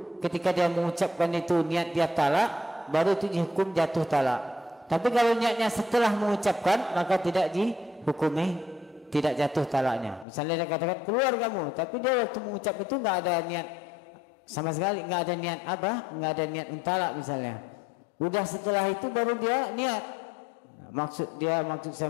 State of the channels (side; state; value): right; drops out; at 10.2 s